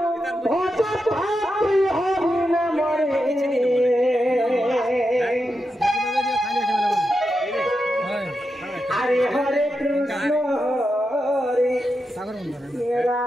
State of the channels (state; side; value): normal; both; correlation 0.87